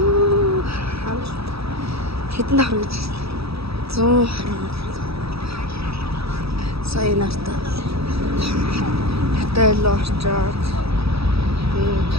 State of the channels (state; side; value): late; left; 0.77 ms